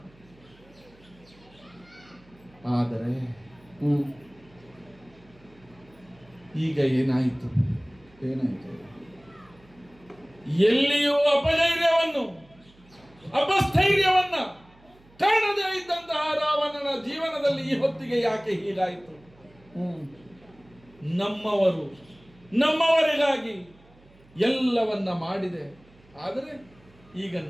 ಆದರೆ ಈಗ ಏನಾಯಿತು? ಎಲ್ಲಿಯೂ ಅಪಸ್ಥೈರ್ಯವನ್ನ ಕಾಣದೇ ಇದ್ದಂತಹ ರಾವಣನ ಜೀವನದಲ್ಲಿ ಈ ಹೊತ್ತಿಗೆ ಯಾಕೆ ಹೀಗಾಯಿತು? ನಮ್ಮವರಿಗಾಗಿ ಎಲ್ಲವನ್ನ ಮಾಡಿದೆ, ಆದರೆ ಈಗ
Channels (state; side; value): noise; right; hum, 28 dB below the sound